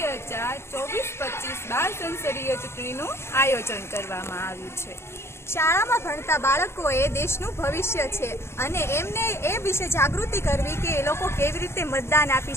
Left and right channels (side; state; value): right; late; 0.12 ms